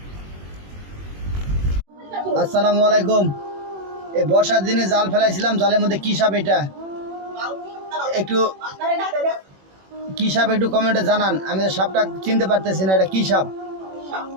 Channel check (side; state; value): left; late; 21 ms